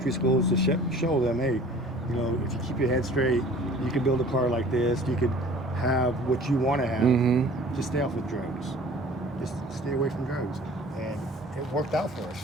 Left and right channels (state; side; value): normal; both; correlation 0.48